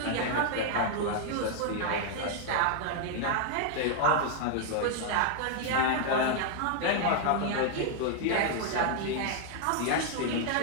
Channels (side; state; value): both; different; correlation 0.00